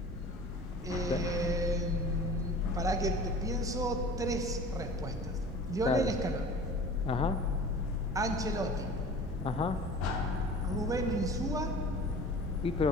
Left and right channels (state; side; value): normal; both; correlation 0.42